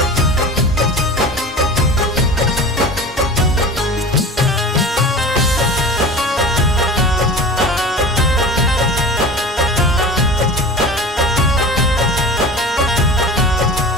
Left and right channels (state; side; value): normal; both; correlation 0.35